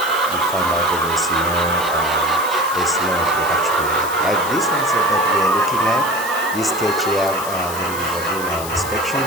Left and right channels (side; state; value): left; noise; hiss, 10 dB below the sound